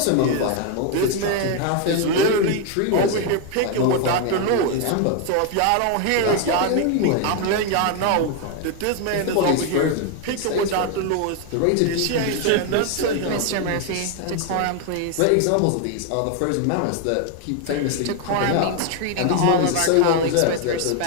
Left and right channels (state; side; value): different; both; correlation 0.01